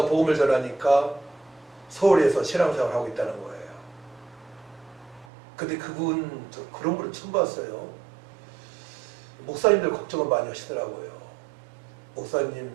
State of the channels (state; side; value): drops out; left; at 5.2 s